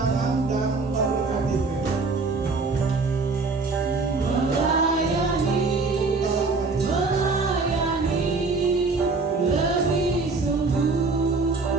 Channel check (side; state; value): left; quieter; 4.0 dB